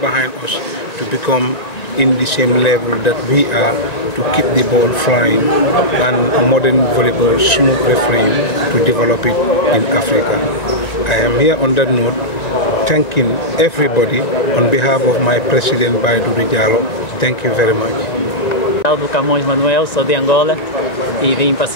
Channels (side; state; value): right; late; 1.9 ms